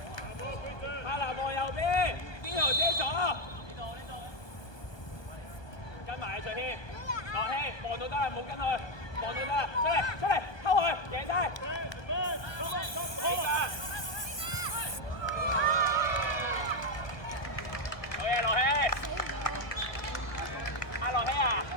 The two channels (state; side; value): late; right; 1.2 ms